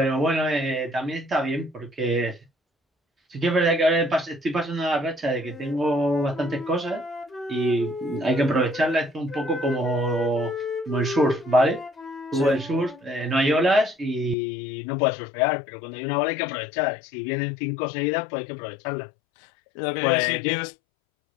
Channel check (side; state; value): right; drops out; at 14.4 s